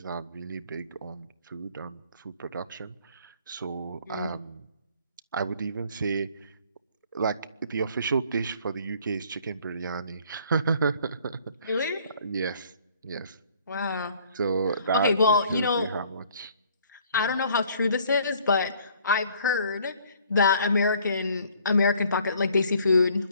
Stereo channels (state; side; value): inverted; both; correlation -0.58